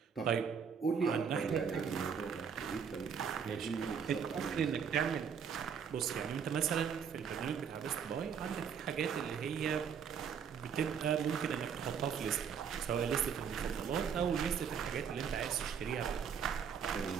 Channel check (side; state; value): left; quieter; 7.1 dB